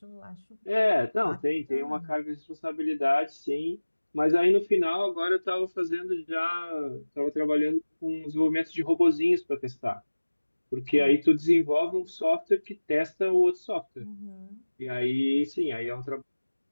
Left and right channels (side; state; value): both; inverted; correlation -1.00